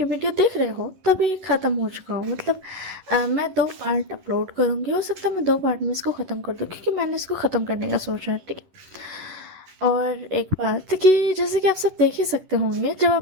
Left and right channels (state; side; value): late; left; 11 ms